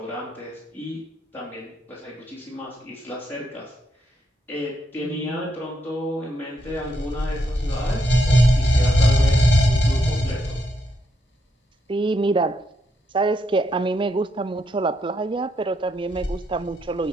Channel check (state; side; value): normal; both; correlation 0.79